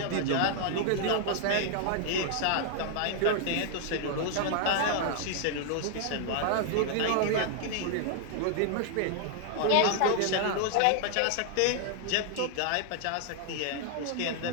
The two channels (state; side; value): different; both; correlation 0.00